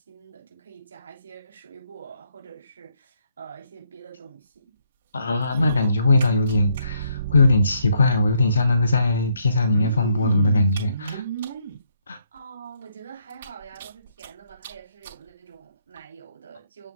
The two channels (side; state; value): both; inverted; correlation -0.73